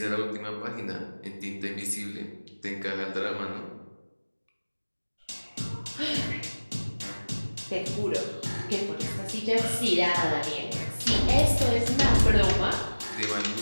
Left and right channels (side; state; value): both; inverted; correlation -1.00